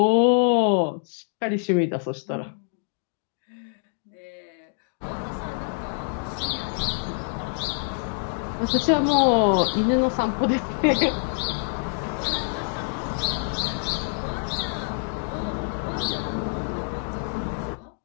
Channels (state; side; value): silent; right; 61 dB below the other